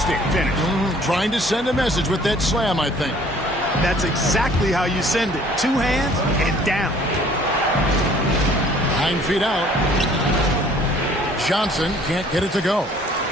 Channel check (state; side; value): normal; both; correlation 0.55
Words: finish. Trying to send a message with that slam, I think. That's exactly how you send it. 2 hands and down. 9 feet out. Johnson can't get it to go.